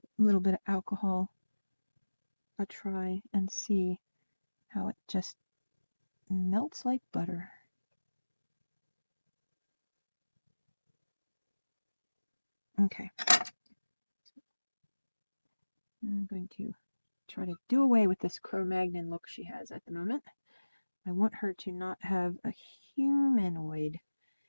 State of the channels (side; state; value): both; inverted; correlation -1.00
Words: little bit of alcohol a try and see how it just melts like butter. Okay. I'm going to try to do away with this Cro-Magnon look she has at the moment. I want her to not have a humanoid